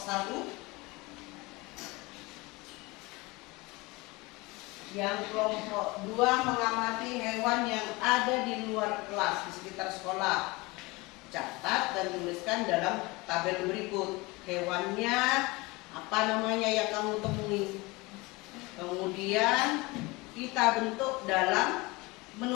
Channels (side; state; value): right; quieter; 23.7 dB